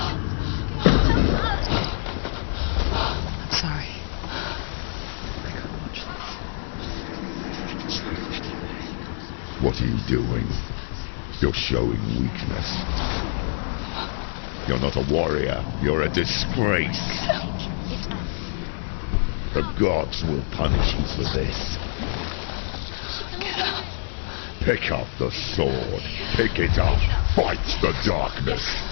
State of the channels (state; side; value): silent; right; 58 dB below the other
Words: I'm sorry. I can't watch this. What are you doing? You're showing weakness. You're not a warrior. You're a disgrace. The gods will punish you for this. Pick up the sword. Pick it up. Fight the darkness.